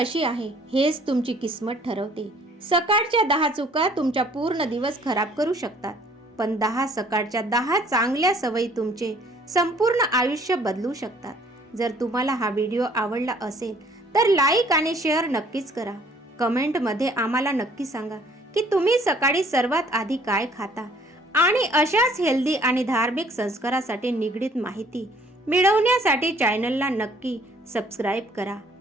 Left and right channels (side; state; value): both; normal; correlation 0.58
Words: आहे हेच तुमची किस्मत ठरवते. सकाळच्या 10 चुका तुमचा पूर्ण दिवस खराब करू शकतात, पण 10 सकाळच्या 10 चांगल्या सवयी तुमचे संपूर्ण आयुष्य बदलू शकतात. जर तुम्हाला हा व्हिडिओ आवडला असेल तर लाईक आणि शेअर नक्कीच करा. कमेंटमध्ये आम्हाला नक्की सांगा की तुम्ही सकाळी सर्वात आधी काय खाता आणि अशाच हेल्दी आणि धार्मिक संस्कारासाठी निगडीत माहिती मिळवण्यासाठी चॅनलला नक्की सबस्क्राईब करा.